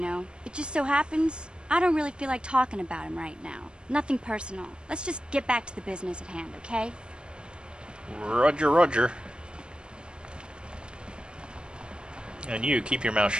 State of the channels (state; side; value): late; left; 0.053 ms